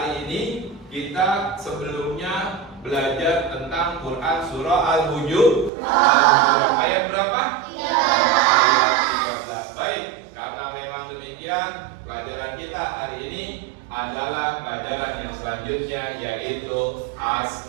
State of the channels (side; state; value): left; drops out; at 5.7 s